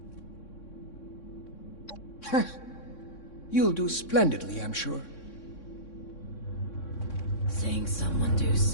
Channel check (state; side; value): late; right; 3.6 ms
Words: You'll do splendidly, I'm sure. Seeing someone do